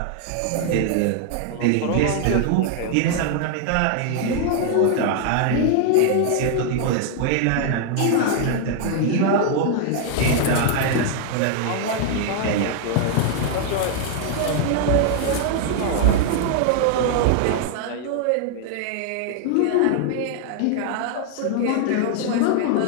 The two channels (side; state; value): both; different; correlation 0.00